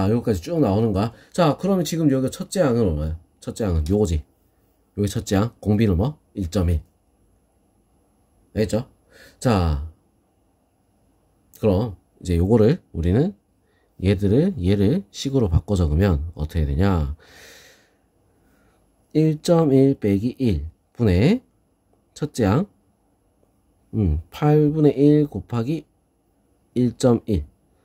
여기까지 쭉 나오는 거야. 자, 그러면 지금 여기 첫째 항은 얼마야? 첫째 항은 요거지. 여기 첫째 항 공비는 뭐? 1.1. 알겠죠? 자, 그럼 이제 요거를 우리는 얘를 식으로 바꿔 적으면 어떻게 되냐? 1.1 빼기 1 분의 첫째 항 8분의 1 곱하기 1.1.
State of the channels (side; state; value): both; identical; correlation 1.00